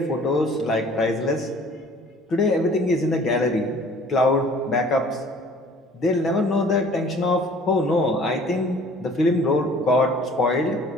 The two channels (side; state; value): both; normal; correlation 0.51